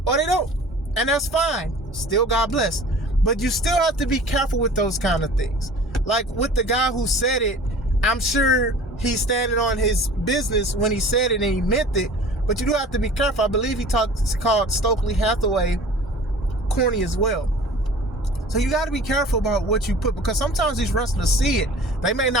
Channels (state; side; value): normal; both; correlation 0.44